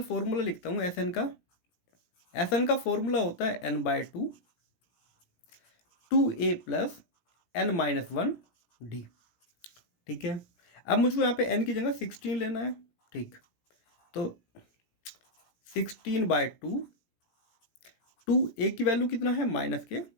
फॉर्मूला लिखता हूँ SN का। SN का फॉर्मूला होता है n/2 2a + n-1d। ठीक है, अब मुझको यहाँ पे n की जगह 16 लेना है। ठीक, तो 16/2, 2a की वैल्यू कितना है -6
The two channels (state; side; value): late; right; 17 ms